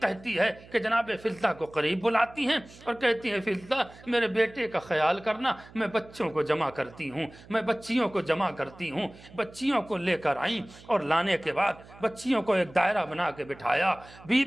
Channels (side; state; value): right; noise; hum, 21 dB below the sound